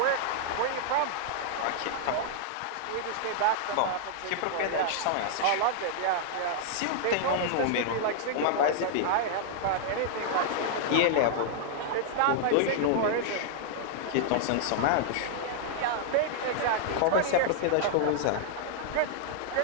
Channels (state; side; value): different; both; correlation -0.01